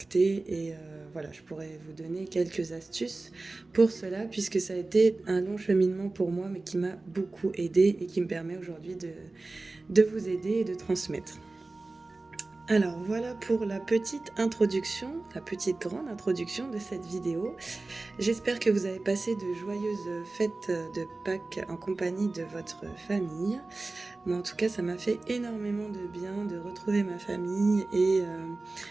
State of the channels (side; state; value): left; quieter; 3.3 dB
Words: et voilà, je pourrais vous donner quelques astuces pour cela, puisque ça a été un long cheminement pour moi, mais qui m'a beaucoup aidé et qui me permet aujourd'hui de vous aider et de transmettre. Alors voilà pour la petite introduction, la petite grande introduction de cette vidéo. J'espère que vous avez passé de joyeuses fêtes de Pâques en compagnie de votre famille. Moi en tout cas ça m'a fait énormément de bien de retrouver ma famille, et